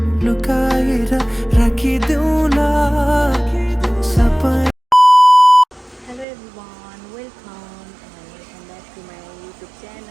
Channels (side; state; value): left; drops out; at 6.2 s